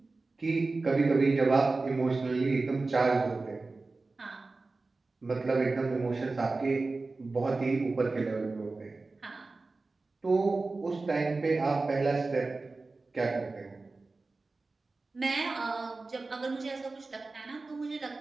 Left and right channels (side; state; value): left; quieter; 3.6 dB